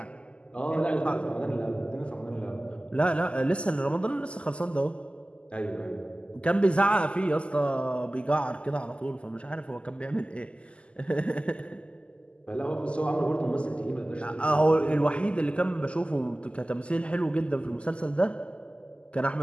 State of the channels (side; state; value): right; late; 0.054 ms